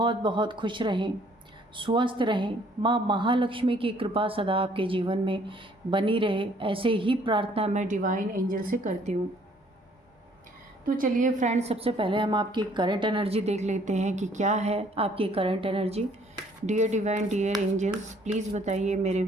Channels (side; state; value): both; normal; correlation 0.61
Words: बहुत खुश रहें, स्वस्थ रहें। माँ महालक्ष्मी की कृपा सदा आपके जीवन में बनी रहे, ऐसे ही प्रार्थना मैं डिवाइन एंजल से करती हूँ। तो चलिए फ्रेंड्स, सबसे पहले हम आपकी करंट एनर्जी देख लेते हैं कि क्या है आपकी current energy. Dear divine, dear angels, please बताइए मेरे